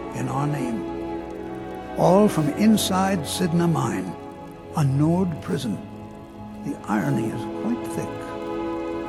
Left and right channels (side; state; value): both; identical; correlation 1.00